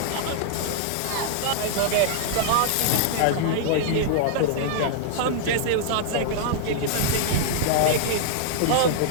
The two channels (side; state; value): both; different; correlation -0.01